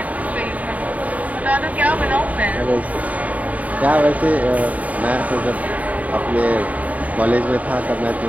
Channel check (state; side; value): late; left; 0.071 ms